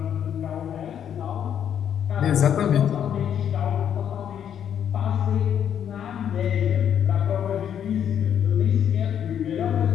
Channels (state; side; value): quieter; right; 9.1 dB